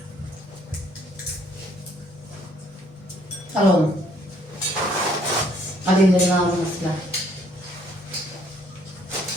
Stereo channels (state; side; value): normal; both; correlation 0.64